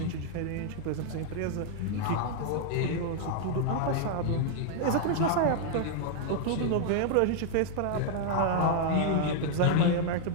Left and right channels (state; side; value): different; both; correlation 0.00